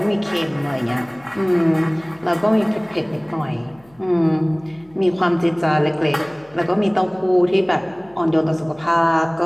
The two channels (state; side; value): noise; left; hum, 30 dB below the sound